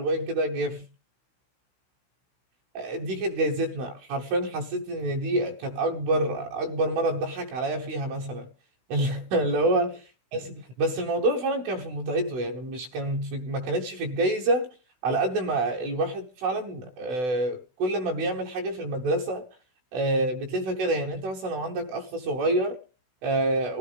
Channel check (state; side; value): late; left; 16 ms